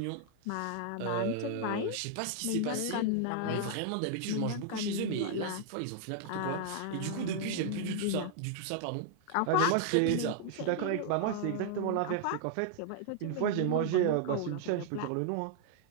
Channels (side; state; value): both; different; correlation -0.01